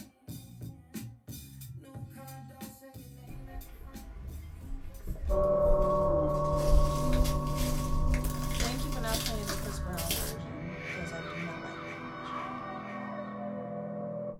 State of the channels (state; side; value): identical; both; correlation 1.00